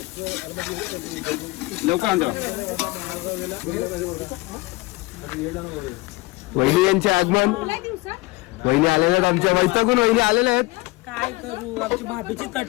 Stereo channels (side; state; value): right; quieter; 22.4 dB